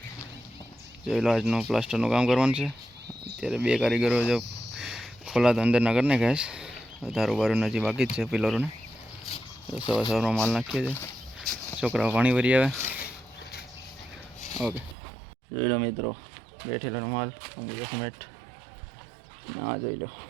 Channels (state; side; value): drops out; left; at 15.0 s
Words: જોઈ લો, આજનું પ્લાસ્ટરનું કામ કરવાનું છે. અત્યારે બે કારીગરો જો ખોલા તો અંદરના કરી નાખ્યા છે. ધારું બારું હજી બાકી જ છે પિલરોને. સવાર સવારમાં માલ નાખીએ છીએ. છોકરાઓ પાણી ભરી આવે. ઓકે, જોઈ લો મિત્રો, બેઠેલો માલ સિમેન્ટ ના જોઈ લો.